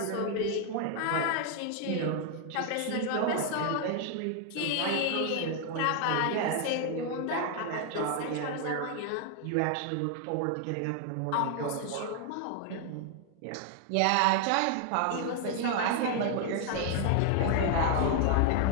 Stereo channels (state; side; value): different; both; correlation 0.00